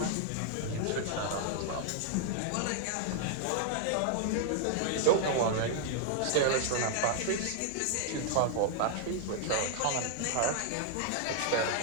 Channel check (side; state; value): both; different; correlation 0.00